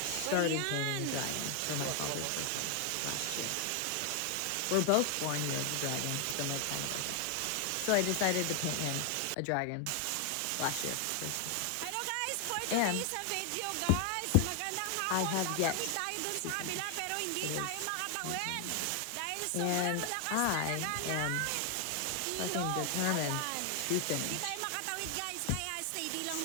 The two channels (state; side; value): different; both; correlation 0.00